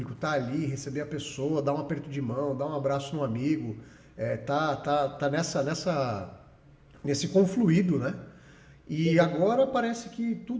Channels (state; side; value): identical; both; correlation 1.00